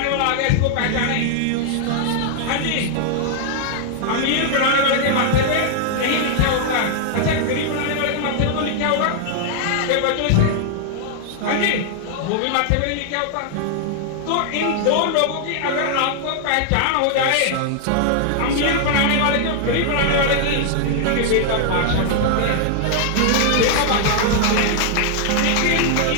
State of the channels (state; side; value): different; both; correlation 0.00